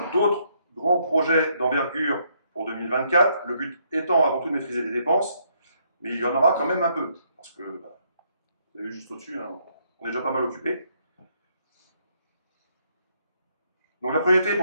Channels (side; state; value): both; inverted; correlation -0.72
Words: d'autres grands projets d'envergure pour 2024, le but étant avant tout de maîtriser les dépenses, mais il y en aura quand même un peu, parce que, bah, vous avez vu juste au-dessus, hein, on est déjà pas mal occupé. Donc la priorité